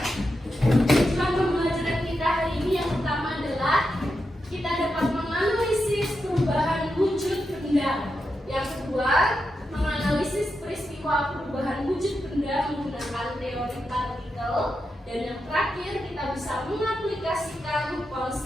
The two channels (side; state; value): both; normal; correlation 0.87